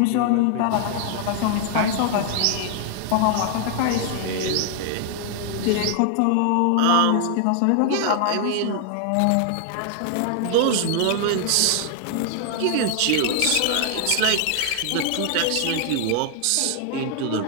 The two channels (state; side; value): different; both; correlation 0.00